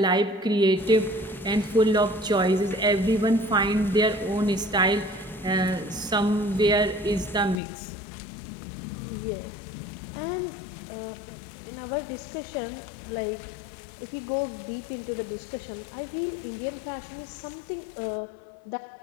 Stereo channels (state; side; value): drops out; right; at 7.6 s